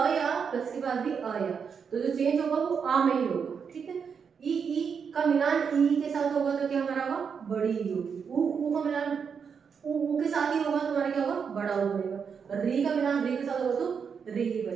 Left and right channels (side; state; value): left; quieter; 6.5 dB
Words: या, प्लस के बाद भी अ या, तो जो चेंज होगा वो आ में ही होगा, ठीक है। ई का मिलान ई के साथ होगा तो क्या हमारा होगा, बड़ी ई होगी। उ का मिलान उ के साथ ही होगा तो हमारा क्या होगा, बड़ा उ बनेगा। री का मिलान री के साथ होगा तो री ही